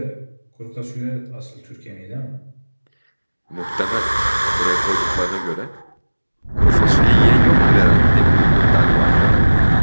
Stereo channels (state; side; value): inverted; both; correlation -1.00